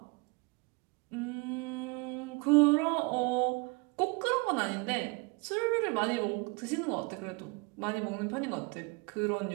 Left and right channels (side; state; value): left; quieter; 29.7 dB